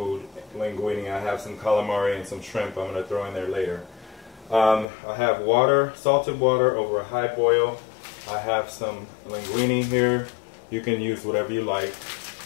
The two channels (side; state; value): right; drops out; at 4.9 s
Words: linguini. I have some calamari and some shrimp I'm going to throw in there later. I have water, salted water over a high boil. I have some linguini here. You can use whatever you like.